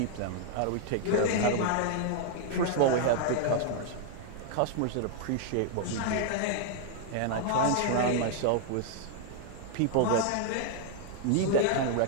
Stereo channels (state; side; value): different; both; correlation 0.00